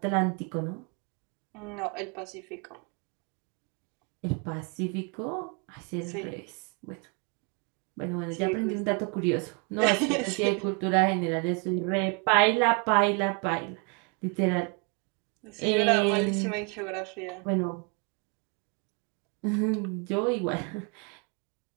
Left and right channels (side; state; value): left; quieter; 34.4 dB